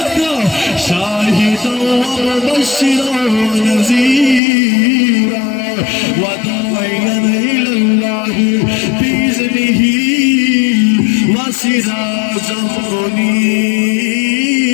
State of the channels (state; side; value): drops out; right; at 4.4 s